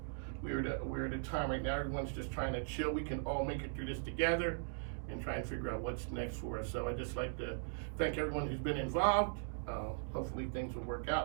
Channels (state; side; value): silent; left; digital silence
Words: We're at a time right now, everyone's just trying to chill. We can all make it through this together and try and figure out what's next for us. So I'd just like to thank everyone who's been involved. Hopefully things will work